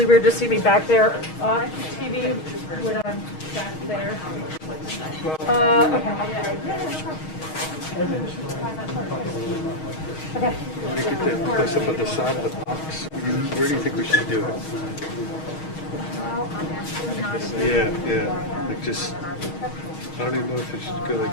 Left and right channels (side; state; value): right; late; 6.4 ms